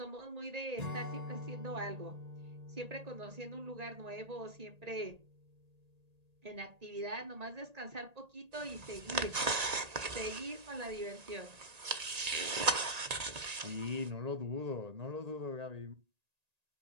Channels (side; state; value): left; late; 1.8 ms